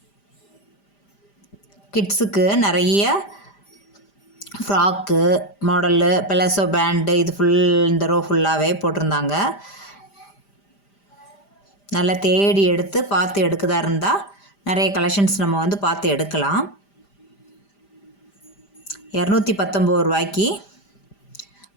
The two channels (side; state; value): right; late; 5.0 ms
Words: கிட்ஸுக்கு நிறைய ஃப்ராக்கு மாடலு, பெலசோ பேண்டு, இது இந்த ரோ ஃபுல்லாகவே போட்டிருந்தாங்க. நல்லா தேடி எடுத்து பார்த்து எடுக்கதா இருந்தால் நிறைய கலெக்ஷன்ஸ் நம்ம வந்து பார்த்து எடுக்கலாம். 219 ரூபாய்க்கு